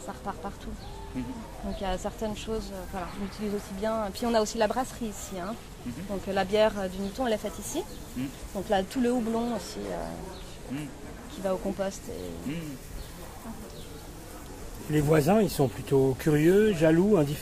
ça repart partout. Donc il y a certaines choses, voilà, on utilise aussi bien. Et puis on a aussi la brasserie ici. Donc la bière du Niton elle est faite ici. Donc là tout le houblon aussi qui va au compost. Les voisins, ils sont plutôt curieux, jaloux,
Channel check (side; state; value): both; identical; correlation 1.00